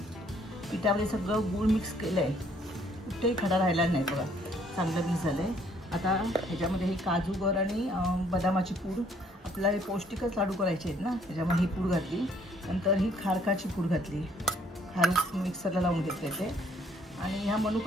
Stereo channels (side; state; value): both; normal; correlation 0.63